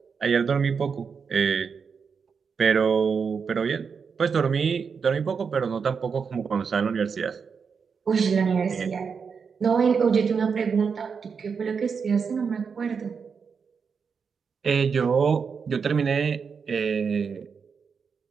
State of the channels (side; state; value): left; quieter; 5.9 dB